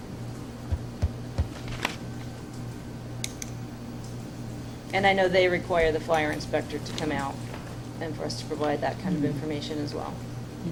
And I know they require the fire inspector to come out and for us to provide that kind of information as well.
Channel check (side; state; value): both; identical; correlation 1.00